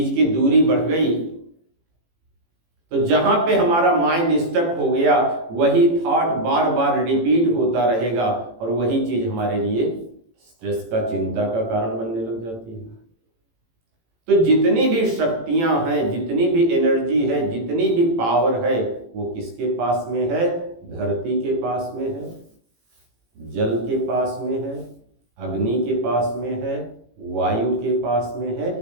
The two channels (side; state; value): left; late; 18 ms